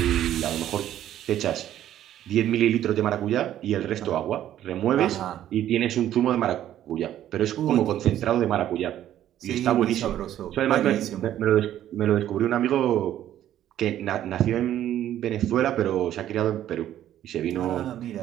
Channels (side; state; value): left; quieter; 11.9 dB